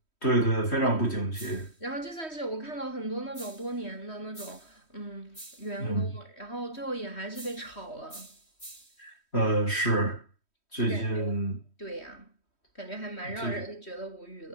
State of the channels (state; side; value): late; right; 3.1 ms